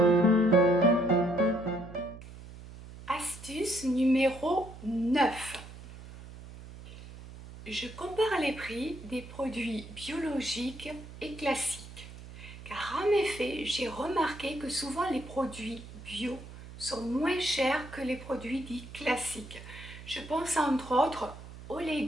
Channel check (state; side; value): noise; right; hum, 15 dB below the sound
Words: Astuce numéro 9. Je compare les prix des produits biologiques et classiques. Car en effet, j'ai remarqué que souvent les produits bio sont moins chers que les produits dits classiques. Je pense entre autres aux